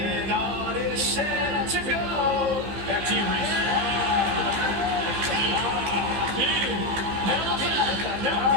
Ott is set to go. Back to you, Reese.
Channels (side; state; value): left; late; 15 ms